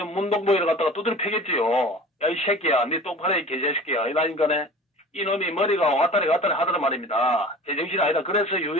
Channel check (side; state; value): both; normal; correlation 0.41